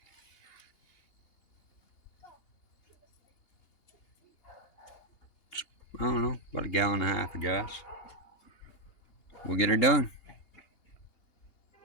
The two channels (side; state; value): right; late; 2.8 ms